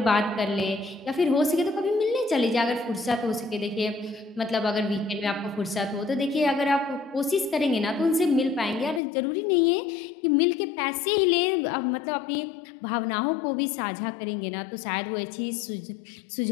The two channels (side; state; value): right; drops out; at 9.0 s